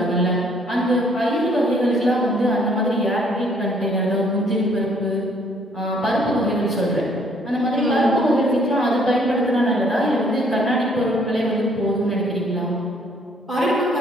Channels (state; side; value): normal; both; correlation 0.63